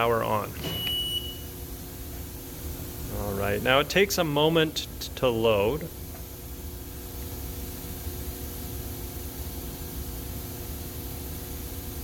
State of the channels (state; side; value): identical; both; correlation 1.00